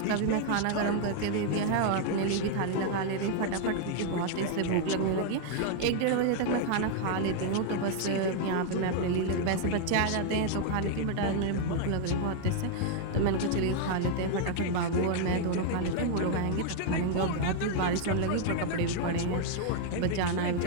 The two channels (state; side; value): different; both; correlation 0.00